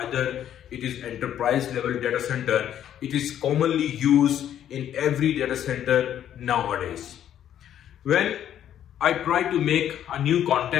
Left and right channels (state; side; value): quieter; right; 10.5 dB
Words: either it is enterprise level data center. It is commonly used in every data center nowadays. When I try to make a new